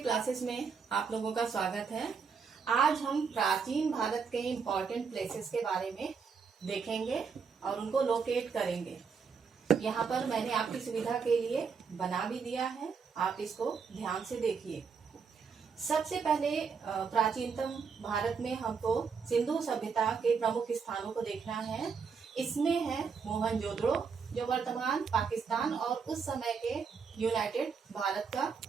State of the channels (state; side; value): quieter; left; 5.8 dB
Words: में आप लोगों का स्वागत है। आज हम प्राचीन भारत के इम्पोर्टेंट प्लेसेस के बारे में देखेंगे और उनको लोकेट करेंगे। यहाँ पर मैंने आपकी सुविधा के लिए बना भी दिया है, आप इसको ध्यान से देखिए। सबसे पहले प्राचीनतम भारत में हमको सिंधु सभ्यता के प्रमुख स्थानों को देखना है। इसमें है मोहनजोदड़ो, जो वर्तमान पाकिस्तान और उस समय के यूनाइटेड भारत का